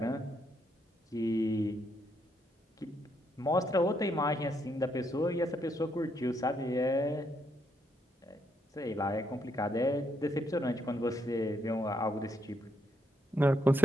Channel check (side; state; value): both; normal; correlation 0.76